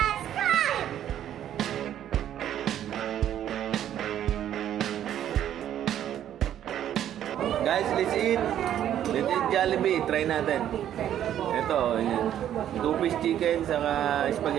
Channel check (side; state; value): left; quieter; 10.8 dB